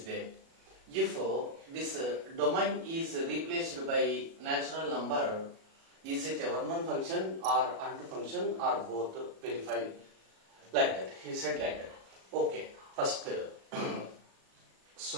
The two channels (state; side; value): late; left; 37 ms